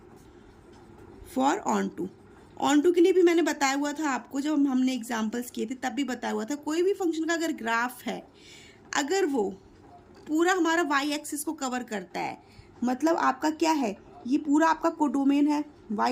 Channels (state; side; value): identical; both; correlation 1.00